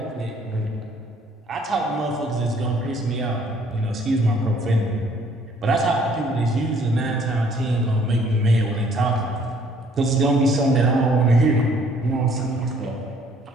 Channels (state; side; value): normal; both; correlation 0.60